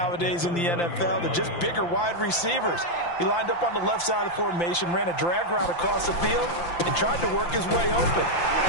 in the NFL. They're just bigger wide receivers. He lined up on the left side of the formation, ran a drag route across the field, and tried to work his way open.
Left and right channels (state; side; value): late; right; 5.8 ms